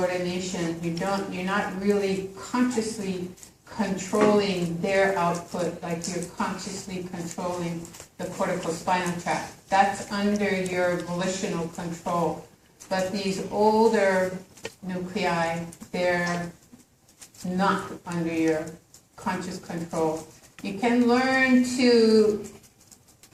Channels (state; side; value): identical; both; correlation 1.00